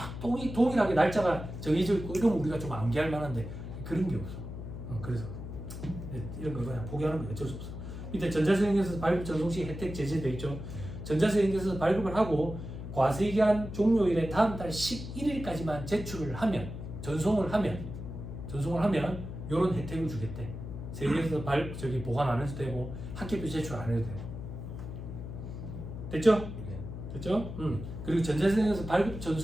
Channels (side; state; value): left; noise; hum, 8 dB below the sound